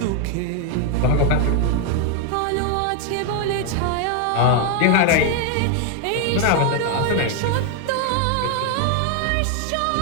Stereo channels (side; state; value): both; different; correlation 0.01